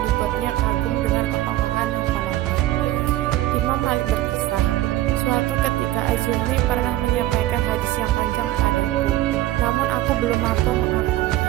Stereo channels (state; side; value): quieter; left; 15.4 dB